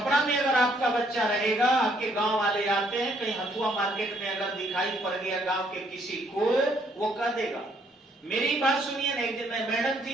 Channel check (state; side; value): normal; both; correlation 0.68